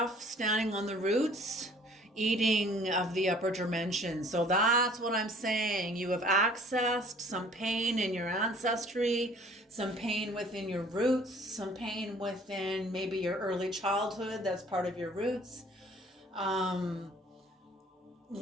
standing on the roots, eating of the upper dimension. So that's what I'm saying. You have accessed some pain in your ancestry, some pain within your roots, some pain within maybe your early childhood. That's part of your roots.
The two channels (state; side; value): normal; both; correlation 0.53